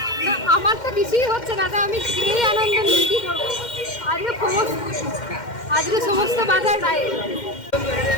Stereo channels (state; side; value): late; right; 2.1 ms